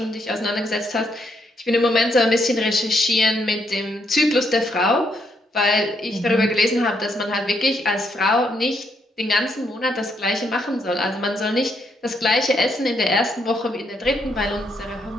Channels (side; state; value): both; normal; correlation 0.75